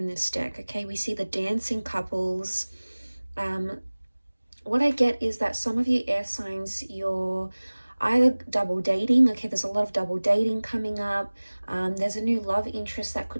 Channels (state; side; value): inverted; both; correlation -1.00